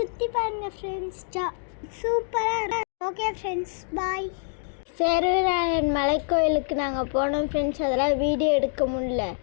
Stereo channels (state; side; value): silent; right; digital silence